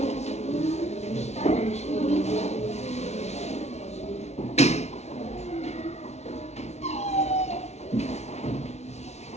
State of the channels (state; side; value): late; right; 0.32 ms